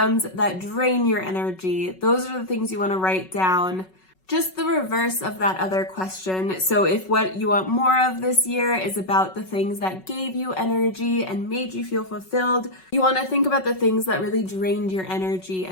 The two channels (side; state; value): right; late; 5.4 ms